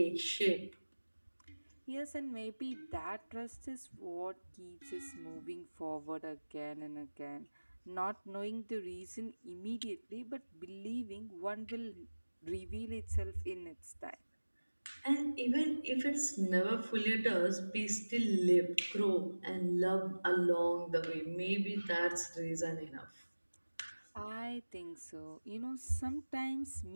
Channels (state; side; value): inverted; both; correlation -1.00